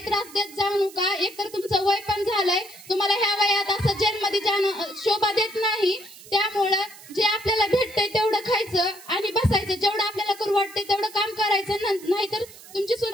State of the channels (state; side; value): noise; right; hiss, 19 dB below the sound